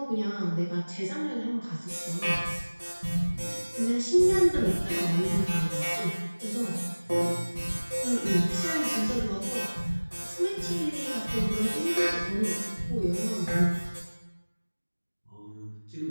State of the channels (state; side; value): inverted; both; correlation -1.00